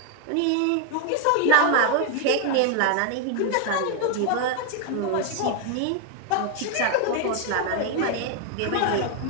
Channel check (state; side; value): different; both; correlation 0.01